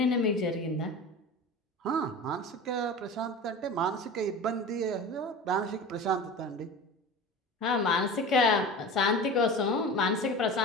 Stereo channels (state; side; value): normal; both; correlation 0.33